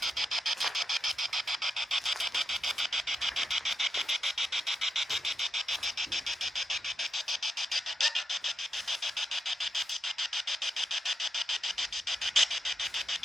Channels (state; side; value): normal; both; correlation 0.86